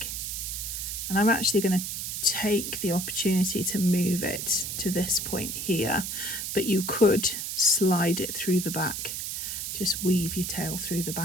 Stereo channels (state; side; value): noise; right; hiss, 4 dB below the sound